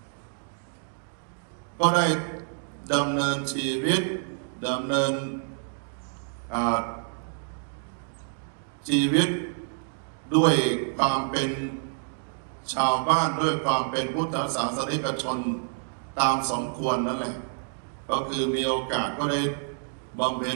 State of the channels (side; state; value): left; silent; 60 dB below the other